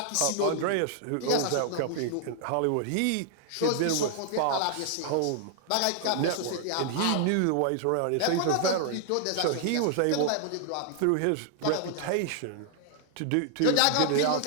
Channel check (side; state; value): both; different; correlation -0.01